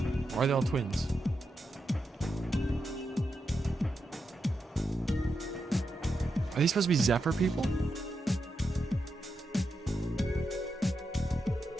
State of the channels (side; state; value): both; normal; correlation 0.86